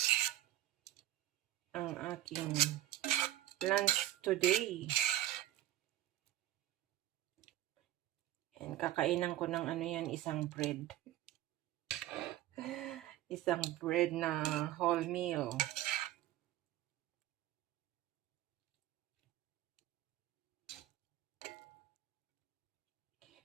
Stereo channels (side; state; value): left; quieter; 14.1 dB